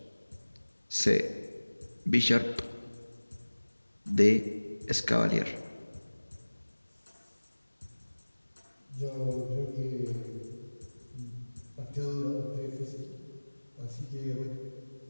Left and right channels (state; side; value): inverted; both; correlation -1.00